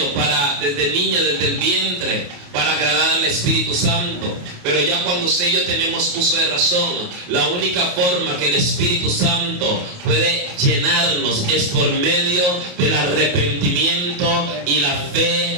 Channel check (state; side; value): late; left; 28 ms